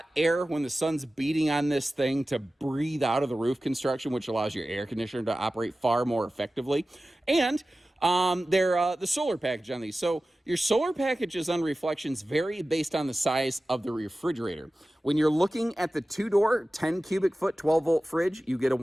air when the sun's beating on this thing to breathe out of the roof construction, which allows your air conditioner to operate far more effectively. And They're the solar package on these. So your solar packages on reflections vary based on the size of the refrigerator. When you're looking at the two-door, 10 cubic foot, 12-volt fridge, you get a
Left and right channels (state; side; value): normal; both; correlation 0.95